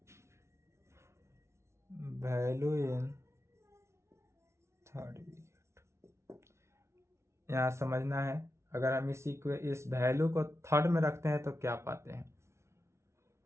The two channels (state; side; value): late; left; 0.13 ms